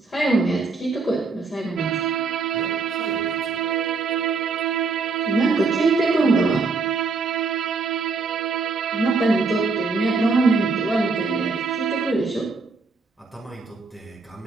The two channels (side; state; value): left; quieter; 4.2 dB